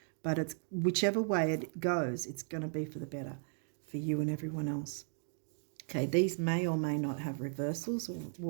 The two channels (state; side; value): silent; left; 54 dB below the other